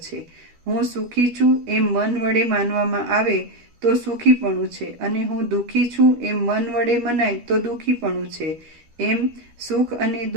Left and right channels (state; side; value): late; left; 12 ms